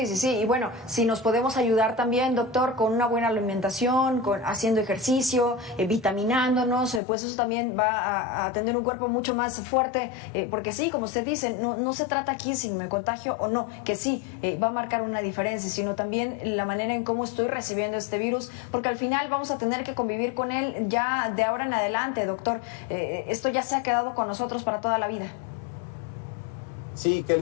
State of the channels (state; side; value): drops out; right; at 7.0 s